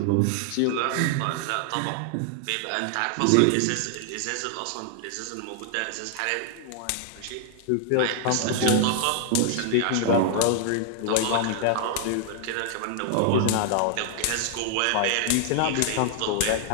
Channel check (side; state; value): both; different; correlation 0.00